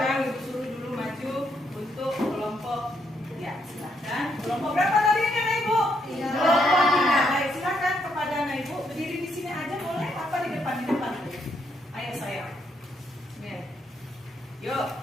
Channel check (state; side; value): normal; both; correlation 0.76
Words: ibu suruh dulu maju untuk kelompok. Ya, silakan. Kelompok berapa tadi ini anak ibu? Kelompok 3. Baik, silakan kepada anak ibu berdiri di sini aja boleh? Apa di depan? Di depan. Ayo sayang. Nih. Yuk.